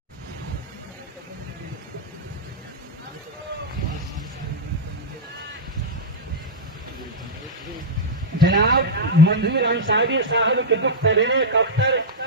जनाब मंजूर अंसारी साहब के दुख तरीने कफ्तर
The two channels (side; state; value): both; normal; correlation -0.08